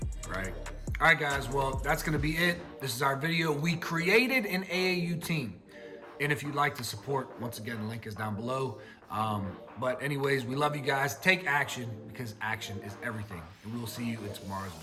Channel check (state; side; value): identical; both; correlation 1.00